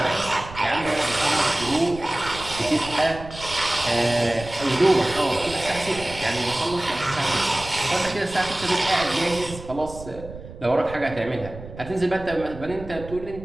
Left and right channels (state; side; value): noise; right; rumble, 14 dB below the sound